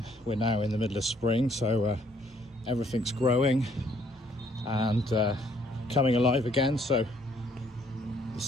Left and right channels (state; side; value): normal; both; correlation 0.65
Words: We're now in the middle of spring, so everything's growing and coming alive again, so the